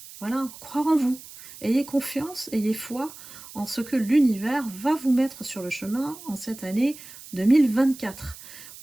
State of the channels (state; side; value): noise; right; hiss, 17 dB below the sound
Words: Voilà, croire en vous. Ayez confiance, ayez foi en ce que l'univers va vous mettre sur le chemin en cette année 2024.